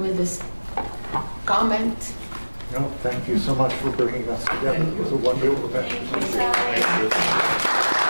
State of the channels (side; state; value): both; inverted; correlation -1.00